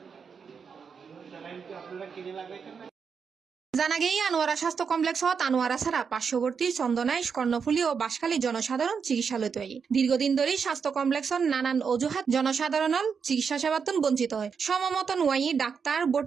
জানা গেই আনোয়ারা স্বাস্থ্য কমপ্লেক্সত আনোয়ারা ছাড়া পার্শ্ববর্তী চন্দনাইশ, কর্ণফুলী ও বাঁশখালী জনসাধারণ চিকিৎসালয় তৈরি। দীর্ঘদিন ধরে স্বাস্থ্য কমপ্লেক্সত নানান অজুহাত জনসাধারণ চিকিৎসা সেবাতন বঞ্চিত হয়। সমমতন ওয়াই ডাক্তার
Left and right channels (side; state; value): left; quieter; 6.1 dB